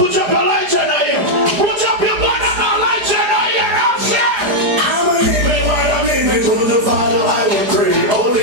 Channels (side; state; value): left; late; 4.9 ms